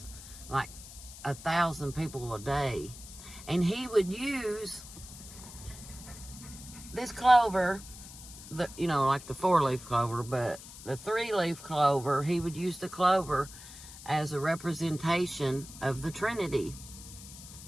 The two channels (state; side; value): noise; left; hiss, 15 dB below the sound